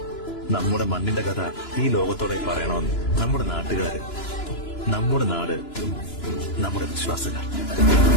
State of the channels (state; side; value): late; right; 2.9 ms